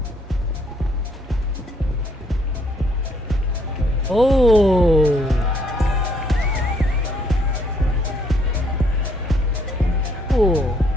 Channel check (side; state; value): both; normal; correlation 0.68